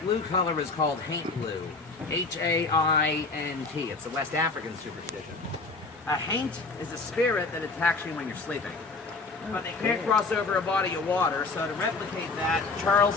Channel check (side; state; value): right; quieter; 3.8 dB